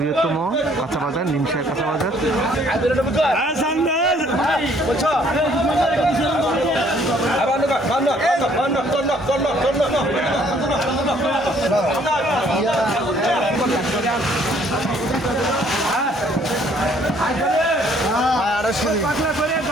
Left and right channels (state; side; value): normal; both; correlation 0.62